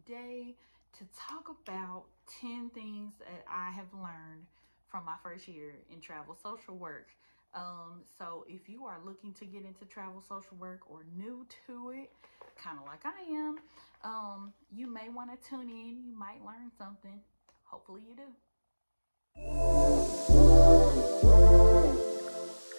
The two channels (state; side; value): inverted; both; correlation -1.00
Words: to talk about 10 things that I have learned from my first year in travel social work. So if you are looking to get into travel social work or new to it, kind of like I am, you may want to tune in. You might learn something. Hopefully you do.